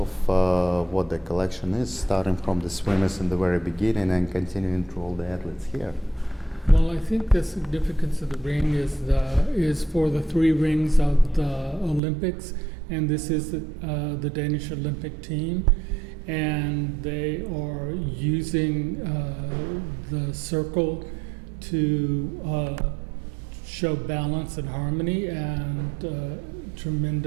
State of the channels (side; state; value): left; drops out; at 12.0 s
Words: what the collection is, starting from the swimmers in the very beginning and continuing through all the athletes here. Well, I think the significance of the ring is for the 3 rings of the Olympics, and this is the Danish Olympic team, and they are using the circle to show balance and harmony and